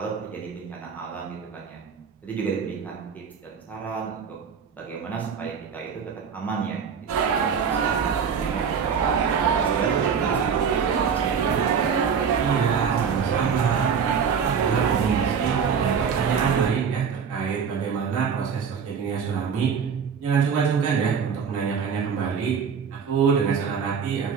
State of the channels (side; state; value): left; quieter; 6.7 dB